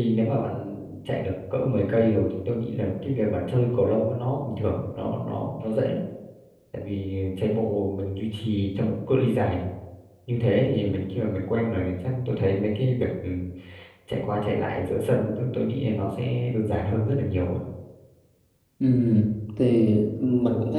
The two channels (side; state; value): both; identical; correlation 1.00